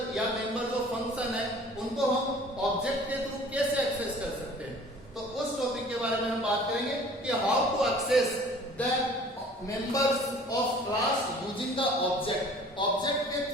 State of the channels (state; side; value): normal; both; correlation 0.49